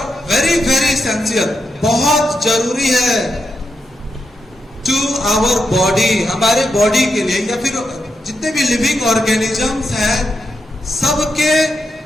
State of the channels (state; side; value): normal; both; correlation 0.85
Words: very very essential, बहुत जरूरी है टू आवर बॉडी, हमारे बॉडी के लिए, या फिर जितने भी लिविंग ऑर्गेनिजम्स हैं सबके